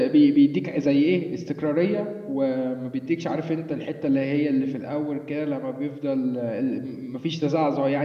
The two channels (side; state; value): both; identical; correlation 1.00